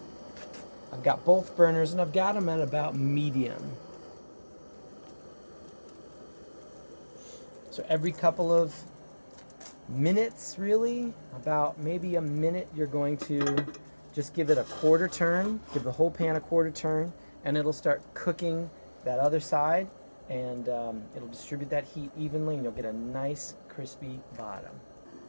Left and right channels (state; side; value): inverted; both; correlation -1.00